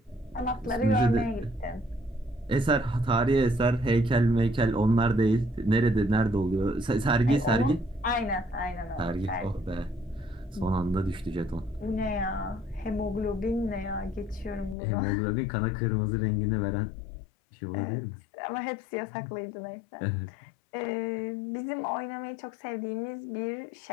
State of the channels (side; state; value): right; drops out; at 14.8 s